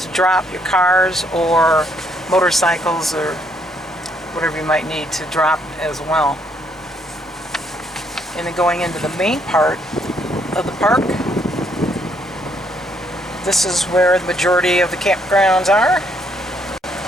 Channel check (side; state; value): both; normal; correlation 0.70